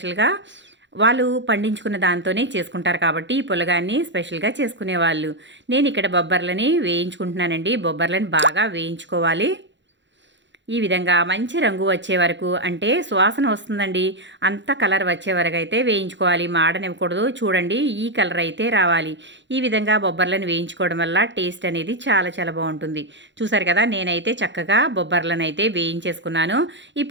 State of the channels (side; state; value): left; late; 0.53 ms